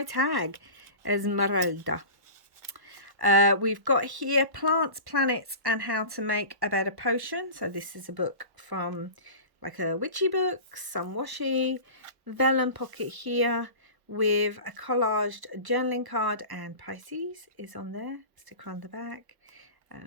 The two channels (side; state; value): left; late; 1.0 ms